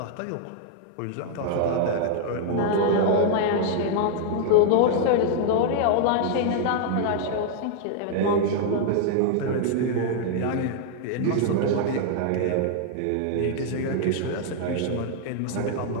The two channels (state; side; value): different; both; correlation -0.01